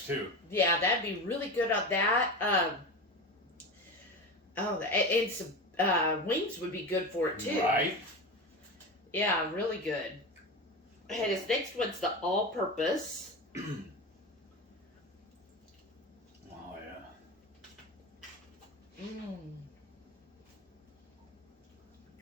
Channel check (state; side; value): normal; both; correlation 0.25